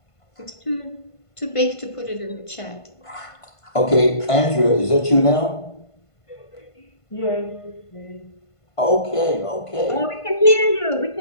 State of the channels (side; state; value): right; late; 1.5 ms